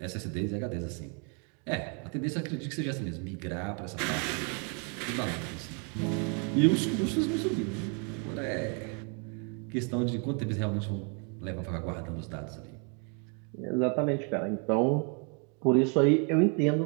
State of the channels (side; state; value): left; quieter; 38.0 dB